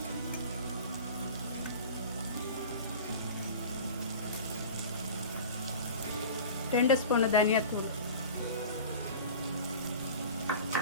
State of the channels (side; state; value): both; inverted; correlation -0.38